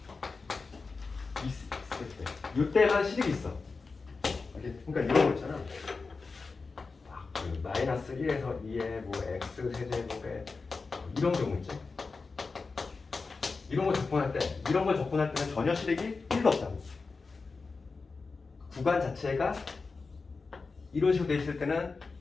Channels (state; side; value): quieter; right; 4.3 dB